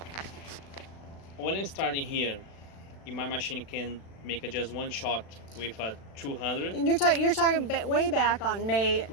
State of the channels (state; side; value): late; right; 36 ms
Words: when I started here, in my machine can make just one shot with a 200. And you're talking way back on May